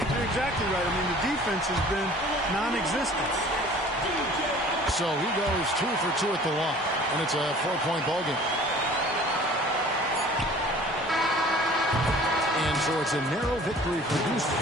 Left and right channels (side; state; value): both; normal; correlation 0.48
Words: You're exactly right. I mean, the defense has been non-existent. So he goes 2 for 2 at the line, and it's a 4-point ball game. And so it's a narrow victory for Houston,